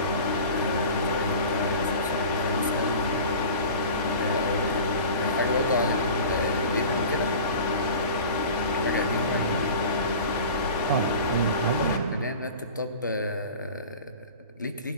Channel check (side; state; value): both; inverted; correlation -0.38